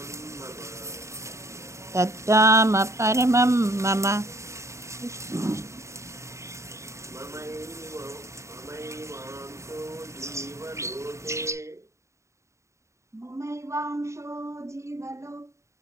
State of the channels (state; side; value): late; left; 0.14 ms